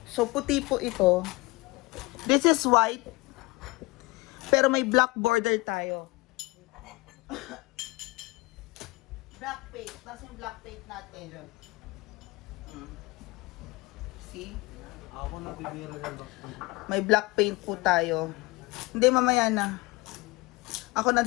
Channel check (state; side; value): quieter; right; 23.4 dB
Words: So, puti po ito. This is white. Pero may black border tayo. Black paint. Tapos yung black paint natin. See? Ako na bibira ng back. May black paint po tayo. Hindi, mamaya na. Ako